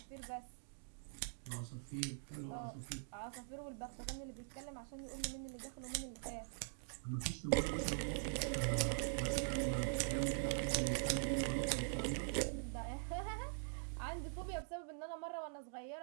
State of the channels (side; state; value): left; silent; digital silence